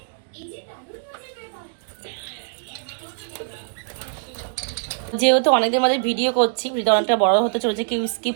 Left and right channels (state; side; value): silent; left; digital silence